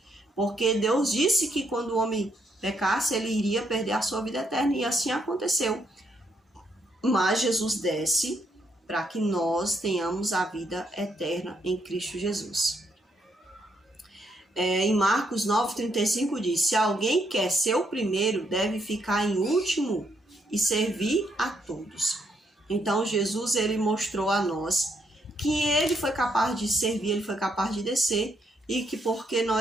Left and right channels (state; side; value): normal; both; correlation 0.75